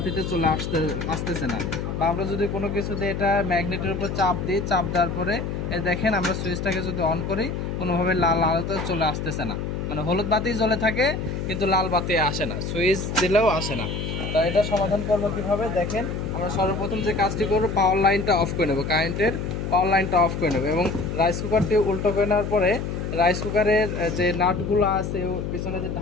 চলে আসতেছে না। বা আমরা যদি কোনো কিছুতে এটা ম্যাগনেটের উপর চাপ দিই, চাপ দেওয়ার পরে দেখেন আমরা সুইচটাকে যদি অন করি, কোনোভাবে লাল আলোতে চলে আসতেছে না। মানে হলুদ বাতি জ্বলে থাকে কিন্তু লাল বাতি আসে না, সুইচ দিলেও আসে না। তো এটা সমাধান করবো কীভাবে দেখেন। আমরা সর্বপ্রথম যে কাজটি করবো, পাওয়ার লাইনটা অফ করে নেবো, কারেন্টের পাওয়ার লাইনটা অফ করে নেবো এবং রাইস কুকারটি উল্টো করে নেওয়ার পরে রাইস কুকারের যে নাটগুলো আছে পিছনে যে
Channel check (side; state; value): left; noise; hum, 4 dB below the sound